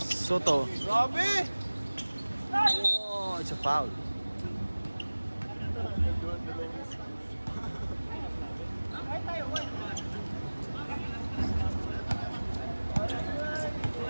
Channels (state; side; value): inverted; both; correlation -1.00